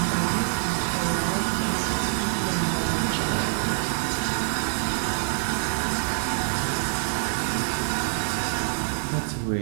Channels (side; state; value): left; silent; digital silence